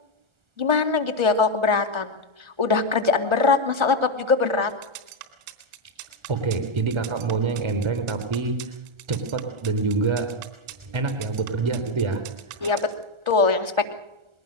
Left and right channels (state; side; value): late; left; 1.3 ms